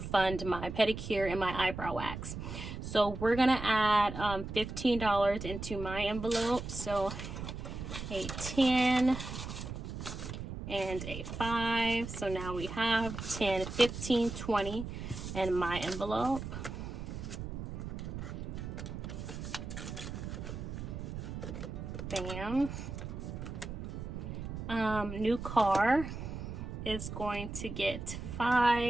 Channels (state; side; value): noise; right; rumble, 7 dB below the sound